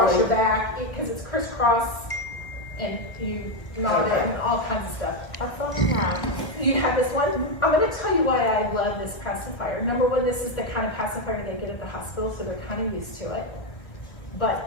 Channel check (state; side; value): late; right; 1.6 ms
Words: really- your back, because it's crisscross, and you knot it and all kinds of stuff. That's all I have. You have this one. I'm gonna tell you why I love this pacifier. Number one, this is the kind of pacifier they get at the hospital, so they're kind of used to it.